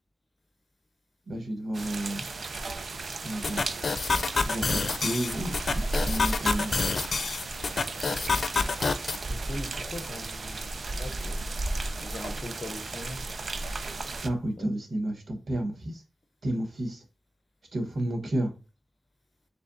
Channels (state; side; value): normal; both; correlation 0.91